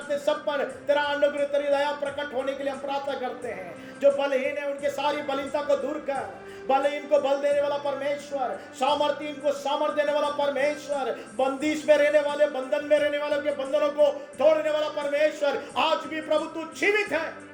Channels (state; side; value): identical; both; correlation 1.00